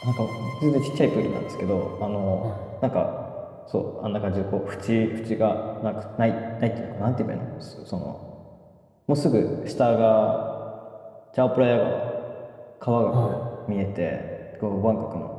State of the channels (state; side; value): identical; both; correlation 1.00